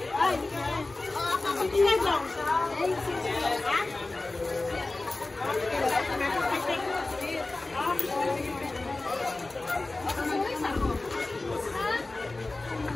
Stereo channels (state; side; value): quieter; right; 3.1 dB